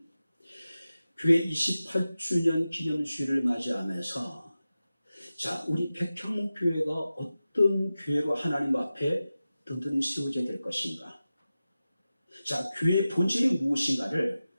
교회 28주년 기념주일을 맞이하면서 자, 우리 백향목교회가 어떤 교회로 하나님 앞에 든든히 세워져야 될 것인가? 자, 교회의 본질이 무엇인가를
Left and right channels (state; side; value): inverted; both; correlation -0.94